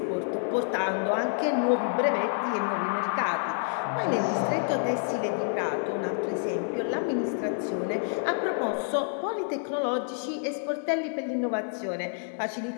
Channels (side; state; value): right; silent; 59 dB below the other